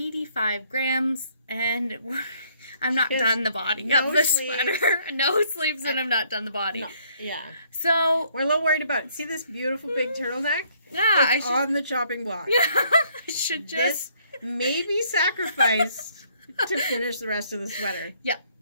grams, and I'm not done the body of the sweater. No sleeves, and I'm not done the body. No. Yeah. So we're a little worried about. See this beautiful big turtleneck? Yeah, it's on the chopping block. Yeah, I should just maybe sacrifice to finish the rest of the sweater. Yeah.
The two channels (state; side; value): inverted; both; correlation -0.66